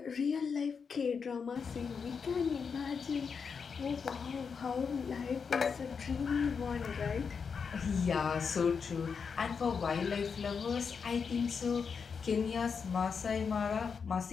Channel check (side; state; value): right; quieter; 5.9 dB